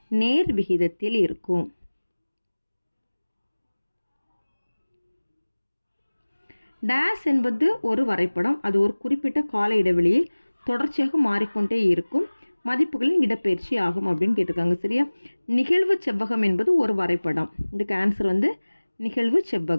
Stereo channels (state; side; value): inverted; both; correlation -1.00